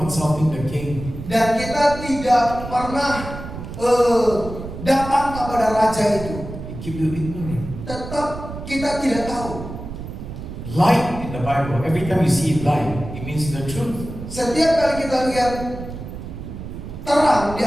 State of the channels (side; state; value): right; noise; rumble, 10 dB below the sound